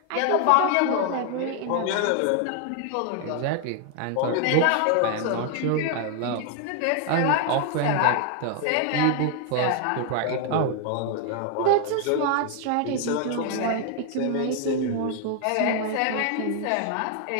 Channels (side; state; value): both; different; correlation 0.00